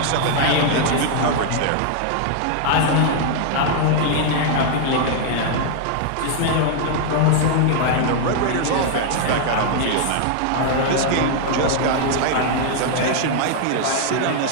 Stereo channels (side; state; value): both; different; correlation 0.00